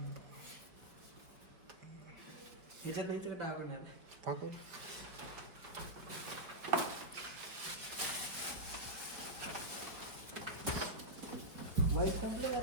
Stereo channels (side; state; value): left; late; 4.7 ms